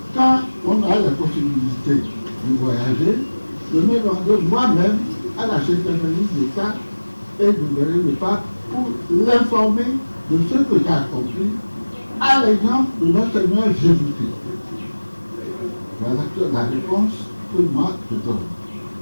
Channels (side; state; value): both; inverted; correlation -1.00